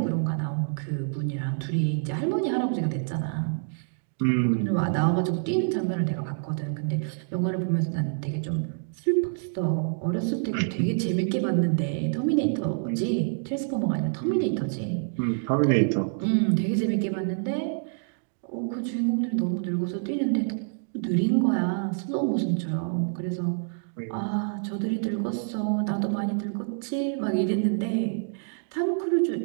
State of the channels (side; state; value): left; silent; digital silence